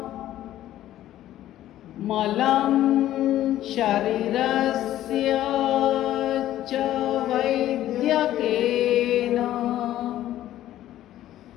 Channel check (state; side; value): quieter; right; 13.2 dB